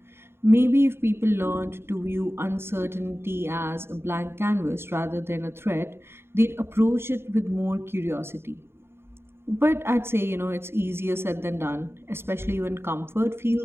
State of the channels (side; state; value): left; late; 0.11 ms